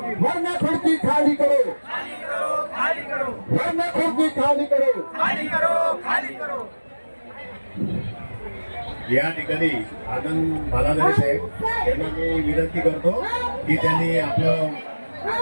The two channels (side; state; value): both; inverted; correlation -1.00